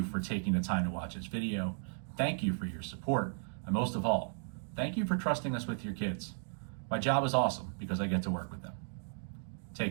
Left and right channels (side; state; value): left; silent; digital silence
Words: for taking the time to watch this video. Thank you for your support, and most of all, thank you for trusting us with your kids. My job is awesome because I get to work with them.